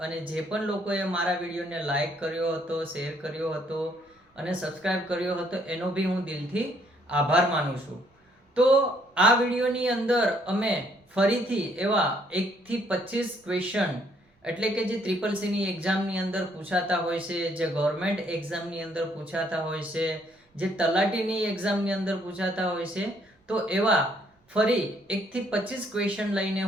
અને જે પણ લોકોએ મારા વિડીયોને લાઈક કર્યો હતો, શેર કર્યો હતો અને સબસ્ક્રાઇબ કર્યો હતો એનો બી હું દિલથી આભાર માનું છું. તો આ વિડીયોની અંદર અમે ફરીથી એવા 1 થી 25 ક્વેશ્ચન એટલે કે જે CCC એક્ઝામની અંદર પૂછાતા હોય છે, જે ગવર્મેન્ટ એક્ઝામની અંદર પૂછાતા હોય છે, જે તલાટીની એક્ઝામની અંદર પૂછાતા હોય છે, તો એવા ફરી 1 થી 25 ક્વેશ્ચન લઈને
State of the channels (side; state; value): both; normal; correlation 0.67